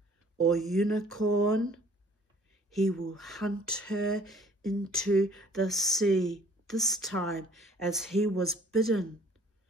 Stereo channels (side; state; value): both; normal; correlation 0.55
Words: or unicorn, he will hunt her into the sea, this time as he was bidden,